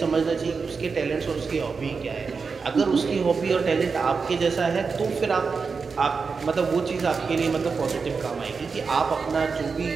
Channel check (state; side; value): quieter; left; 5.0 dB